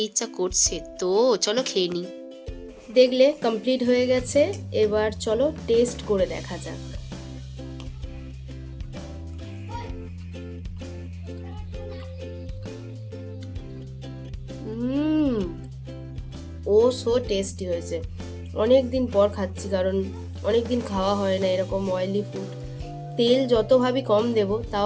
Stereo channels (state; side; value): identical; both; correlation 1.00